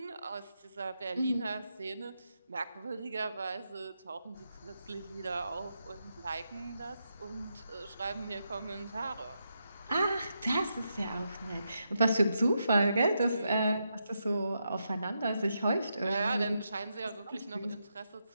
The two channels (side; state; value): both; inverted; correlation -0.84